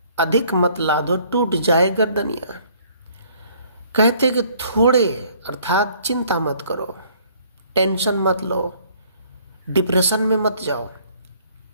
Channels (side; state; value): both; inverted; correlation -0.60